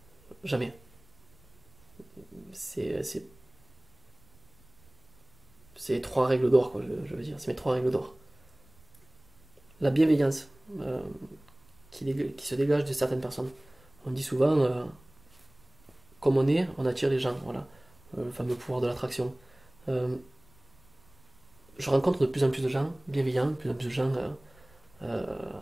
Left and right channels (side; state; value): right; noise; rumble, 29 dB below the sound